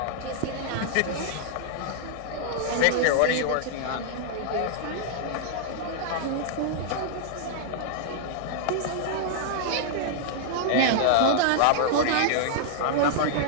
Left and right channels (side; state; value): both; different; correlation -0.01